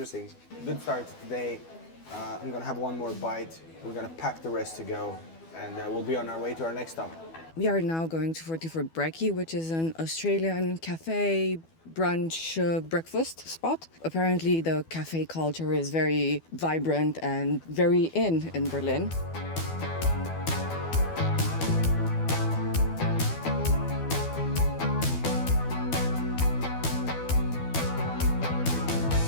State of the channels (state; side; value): late; right; 12 ms